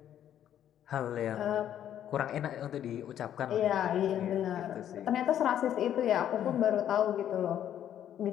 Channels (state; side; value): quieter; right; 10.5 dB